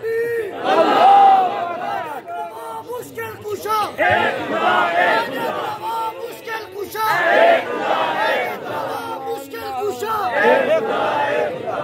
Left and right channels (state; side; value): identical; both; correlation 1.00